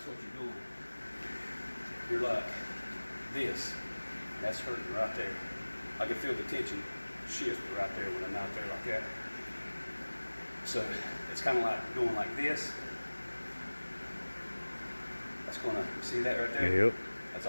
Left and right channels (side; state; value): both; inverted; correlation -1.00